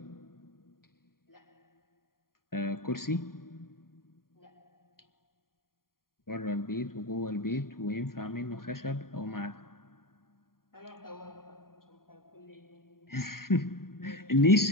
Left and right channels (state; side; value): late; right; 0.92 ms